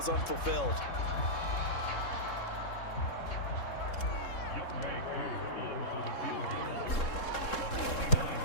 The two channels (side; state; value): right; late; 3.7 ms